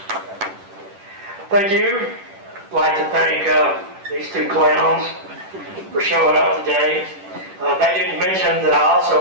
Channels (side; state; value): left; late; 10 ms